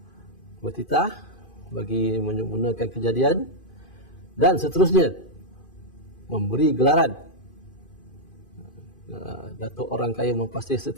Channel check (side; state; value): right; late; 2.5 ms